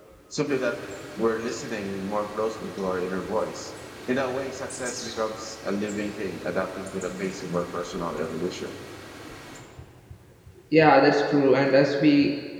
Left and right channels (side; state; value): both; identical; correlation 1.00